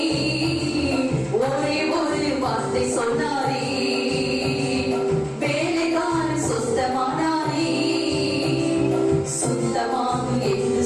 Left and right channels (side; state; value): both; identical; correlation 1.00